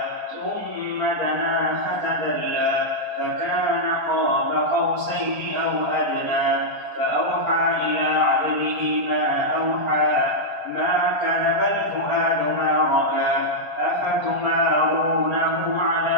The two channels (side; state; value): left; late; 4.3 ms